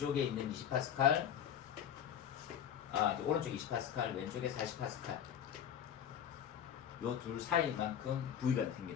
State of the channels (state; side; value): quieter; right; 9.2 dB